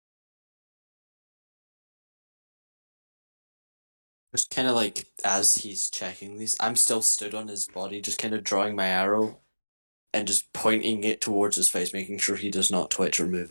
Just kind of like as he's checking these, I'm still stood on his body, just kind of drawing my arrow and just pointing it towards his face, making sure he does not twitch or move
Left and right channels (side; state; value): both; inverted; correlation -1.00